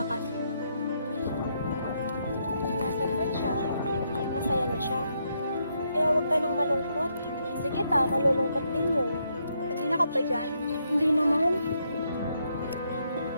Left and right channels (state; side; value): inverted; both; correlation -0.77